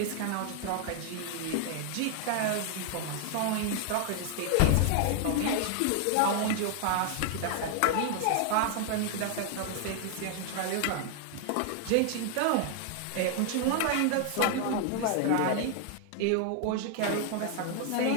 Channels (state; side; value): different; both; correlation 0.00